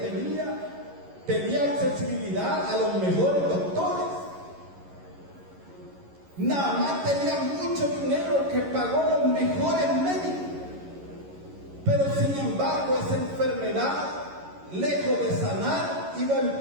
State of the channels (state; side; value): late; left; 11 ms